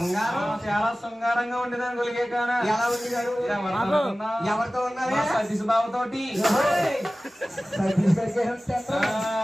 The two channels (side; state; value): both; normal; correlation 0.97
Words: చాలా శృంగారంగా ఉండేదాన్ని గొలిగే కానా. ఎవరితో ఉన్నారు? సతీష్ బాబుతోటి.